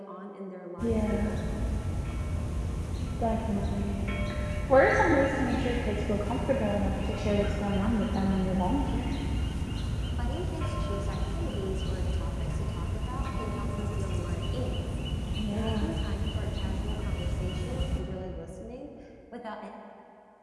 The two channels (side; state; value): both; identical; correlation 1.00